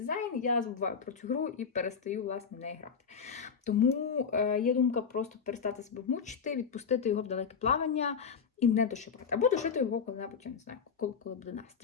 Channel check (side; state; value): right; quieter; 6.3 dB